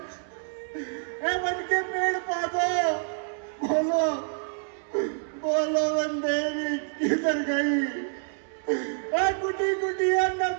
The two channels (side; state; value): left; silent; digital silence